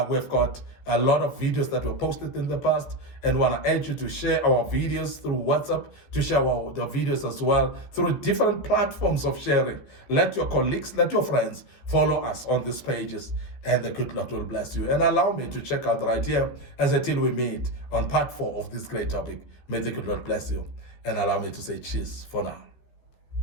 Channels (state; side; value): late; right; 14 ms